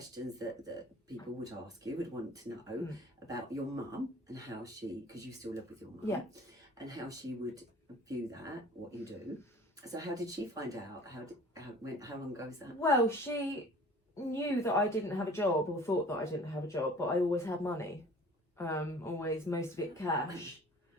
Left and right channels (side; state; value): both; normal; correlation 0.47